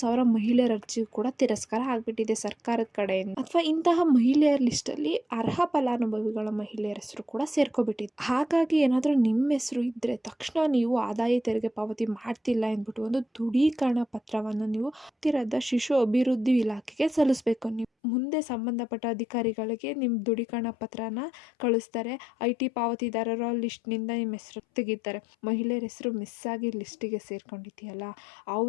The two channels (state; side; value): drops out; right; at 17.9 s